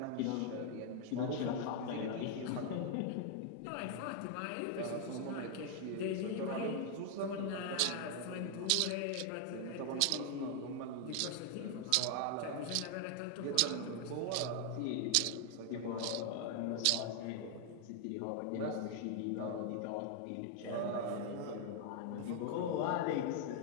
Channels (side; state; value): both; different; correlation 0.00